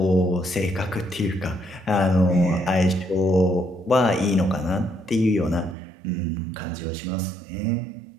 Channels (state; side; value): drops out; left; at 5.8 s